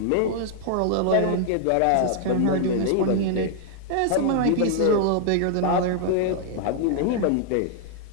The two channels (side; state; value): both; different; correlation -0.01